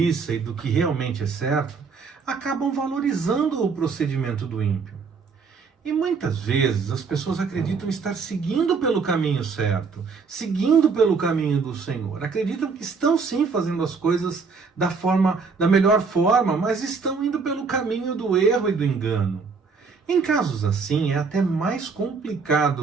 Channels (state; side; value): quieter; left; 5.0 dB